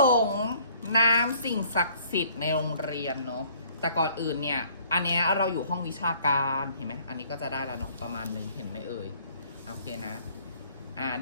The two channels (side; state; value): both; inverted; correlation -0.59